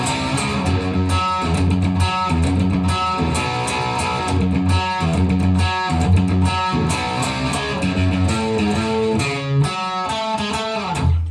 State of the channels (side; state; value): both; identical; correlation 1.00